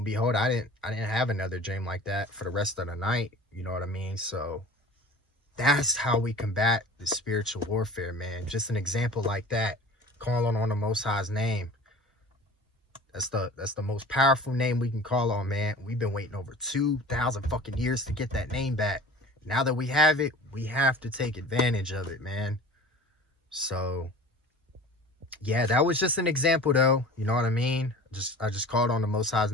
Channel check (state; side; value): normal; both; correlation 0.41